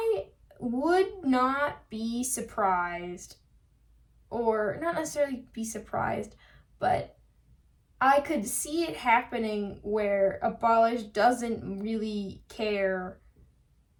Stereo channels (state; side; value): identical; both; correlation 1.00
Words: would not be surprised, or not necessarily be surprised, but I could see it happening where Abolish doesn't really care